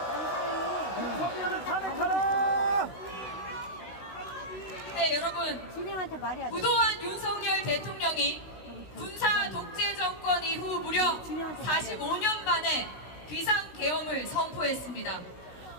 윤석열을 탄핵하라! 네, 여러분. 진행한테 말해야 돼. 부도한 윤석열 대통령이 군사 독재 정권 이후 무려 45년 만에 비상계엄을 선포했습니다.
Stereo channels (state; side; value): late; right; 16 ms